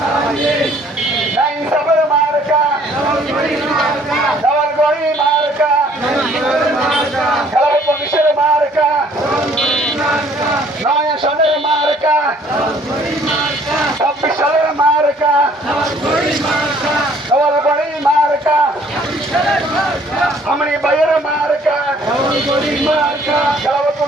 নাই ইনসাফের মার্কা দেওয়ালগড়ি মার্কা খেলার পুলিশের মার্কা নয় সনের মার্কা 26 সালের মার্কা দেওয়ালগড়ি মার্কা আমনি ভাইয়ের মার্কা খেলার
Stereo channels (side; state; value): both; normal; correlation 0.59